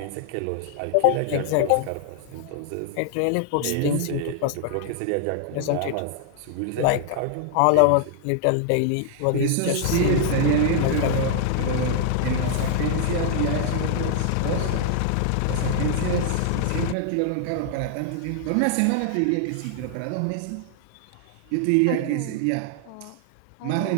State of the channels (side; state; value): both; different; correlation 0.00